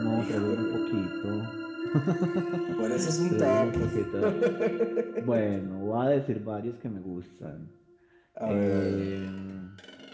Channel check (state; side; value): identical; both; correlation 1.00